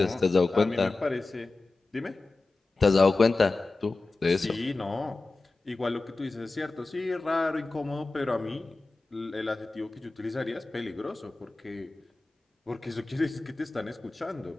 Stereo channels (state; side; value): quieter; right; 3.4 dB